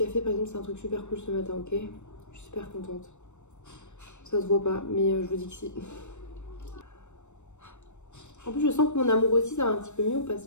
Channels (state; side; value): late; right; 0.84 ms